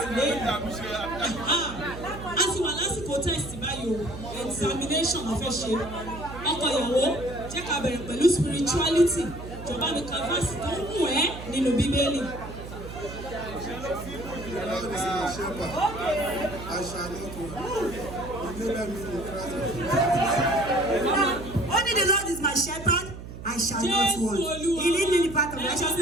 lẹ́yìn. A sì wà lásìkò test báyìí o, examination la fẹ́ ṣe. Ọkọ ìyàwó jẹ́ ká bẹ̀rẹ̀ pẹ̀lú spirituality. Jọba mi ka verse tó ń mú ẹ́ nínú Bíbélì. Only the Lord is my shepherd, I shall not want. He lead me in the path of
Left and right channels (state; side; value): noise; right; hum, 11 dB below the sound